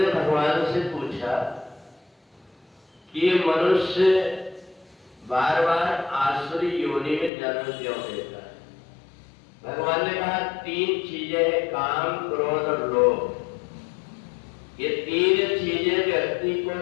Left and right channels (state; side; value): drops out; right; at 7.3 s